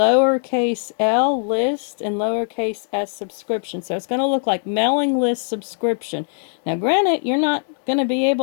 l list, and lowercase s subscription. So it's going to look like mailing list subscription. Now granted, you're not going to be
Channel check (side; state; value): right; silent; 56 dB below the other